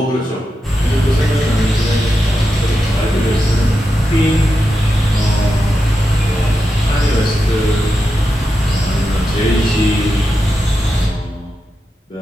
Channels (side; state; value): both; normal; correlation 0.88